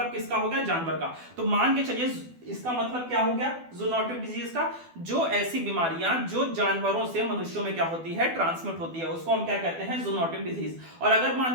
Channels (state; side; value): late; left; 12 ms